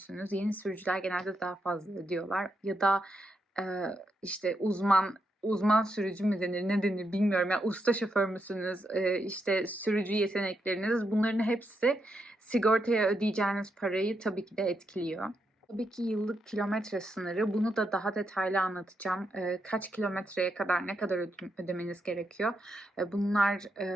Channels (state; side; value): normal; both; correlation 0.82